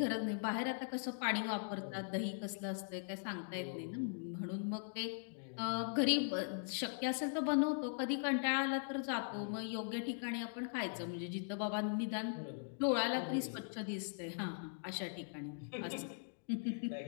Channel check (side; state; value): right; silent; digital silence